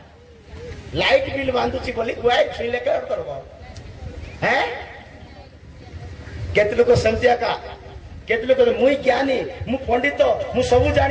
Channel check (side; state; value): both; identical; correlation 1.00